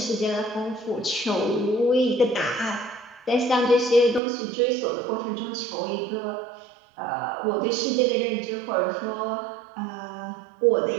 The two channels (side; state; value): left; drops out; at 4.2 s